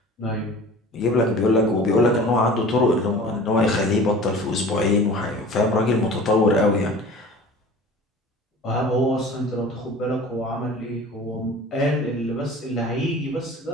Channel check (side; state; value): both; normal; correlation 0.42